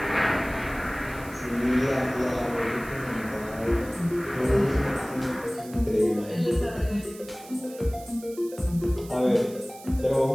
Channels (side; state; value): right; noise; hiss, 19 dB below the sound